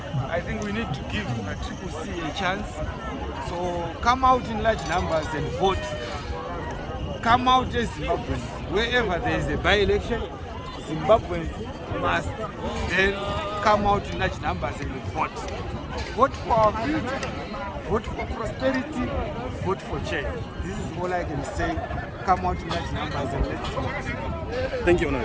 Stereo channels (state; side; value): identical; both; correlation 1.00